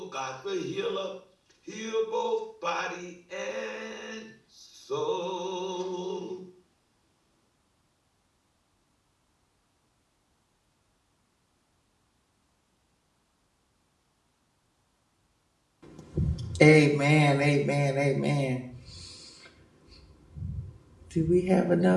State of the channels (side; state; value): both; identical; correlation 1.00